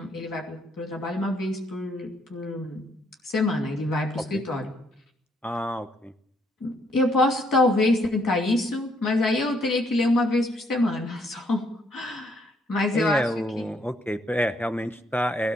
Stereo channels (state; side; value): normal; both; correlation 0.70